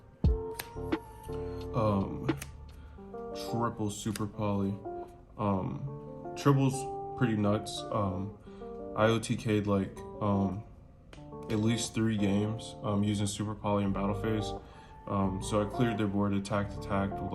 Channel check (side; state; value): both; identical; correlation 1.00